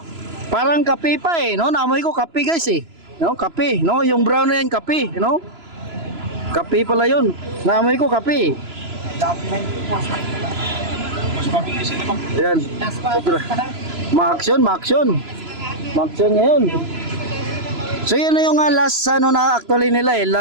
parang kape pa no? Naamoy ko kape guys No, kape, no? Yung brown na yan, kape, no? Kape pala yun. Naamoy ko kape. Yan. Ma-action ngayon. So yun na yung last na actually nila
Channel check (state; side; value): late; left; 3.0 ms